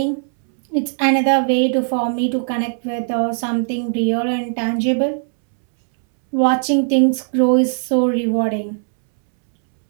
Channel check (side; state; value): left; silent; 67 dB below the other